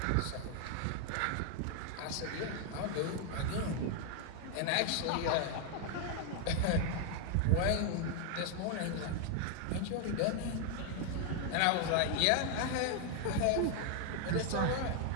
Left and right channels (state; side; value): different; both; correlation 0.00